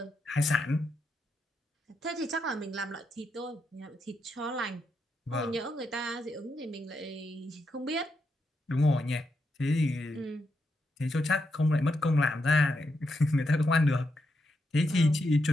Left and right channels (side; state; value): both; normal; correlation 0.83